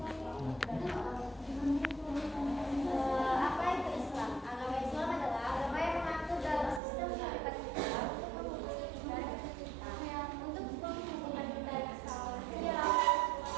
Apa itu Islam? Agama Islam adalah agama yang mengatur dalam sistem kehidupan kita untuk menghubungkan kita dengan alam semesta.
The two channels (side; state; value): left; drops out; at 6.8 s